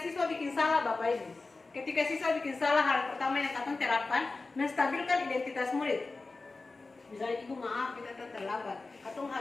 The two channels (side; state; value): right; quieter; 3.6 dB